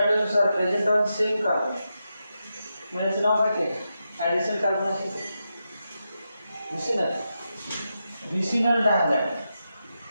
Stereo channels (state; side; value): inverted; both; correlation -0.87